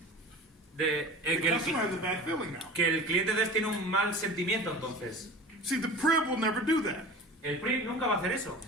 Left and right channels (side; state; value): both; normal; correlation 0.37